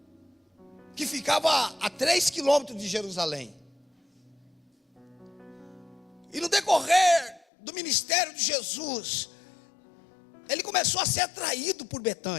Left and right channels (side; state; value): right; drops out; at 7.5 s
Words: que ficava a 3 quilômetros de Jerusalém. E no decorrer do ministério de Jesus, ele começou a ser atraído por